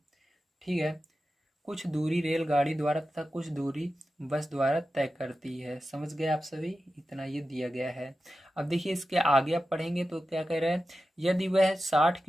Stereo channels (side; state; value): both; normal; correlation 0.92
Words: ठीक है, कुछ दूरी रेलगाड़ी द्वारा तथा कुछ दूरी बस द्वारा तय करती है। समझ गए आप सभी, इतना ये दिया गया है। अब देखिए इसके आगे आप पढ़ेंगे तो क्या कह रहे हैं, यदि वह 60